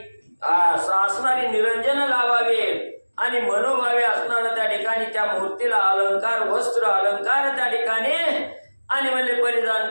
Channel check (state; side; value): inverted; both; correlation -1.00